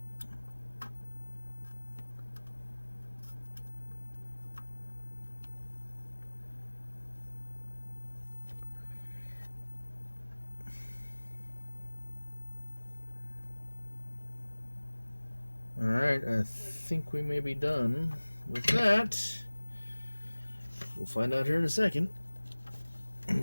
Alright, I think we may be done with that. We'll find out here in a second. Let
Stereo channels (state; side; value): inverted; both; correlation -1.00